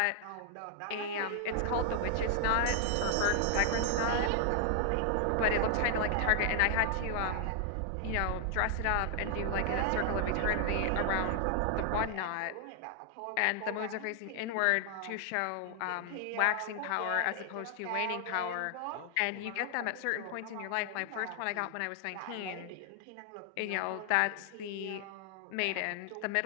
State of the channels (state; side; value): different; both; correlation 0.00